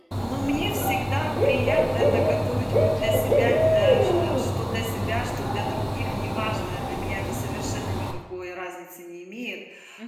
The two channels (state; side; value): identical; both; correlation 1.00